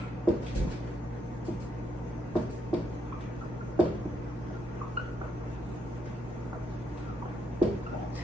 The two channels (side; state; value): both; normal; correlation 0.76